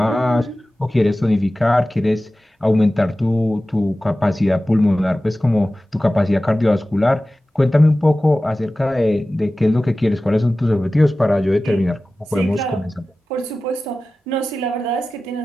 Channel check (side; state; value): both; normal; correlation 0.96